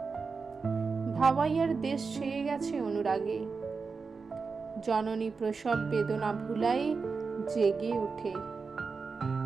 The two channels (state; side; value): quieter; left; 4.8 dB